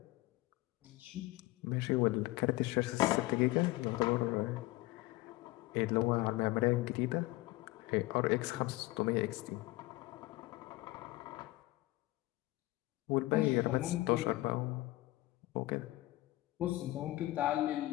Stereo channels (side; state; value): right; quieter; 19.2 dB